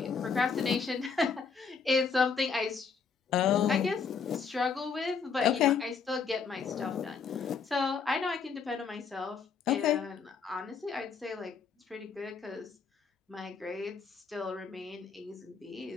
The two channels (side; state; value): right; quieter; 5.7 dB